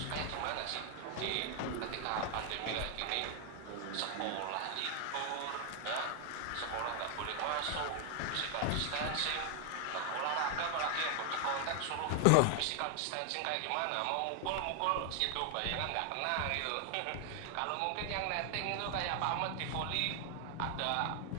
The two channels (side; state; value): both; different; correlation 0.00